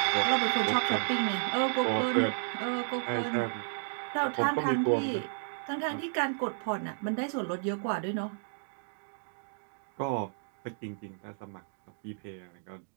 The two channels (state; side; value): silent; left; digital silence